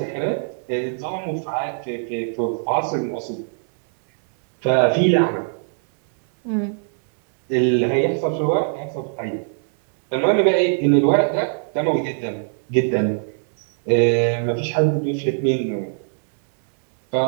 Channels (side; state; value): left; silent; 63 dB below the other